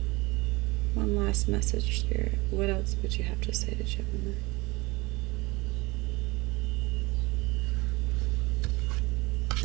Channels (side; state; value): left; quieter; 23.6 dB